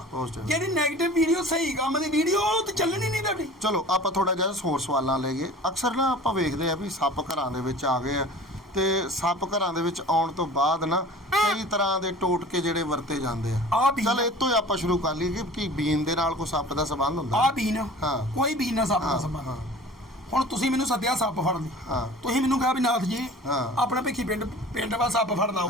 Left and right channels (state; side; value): normal; both; correlation 0.42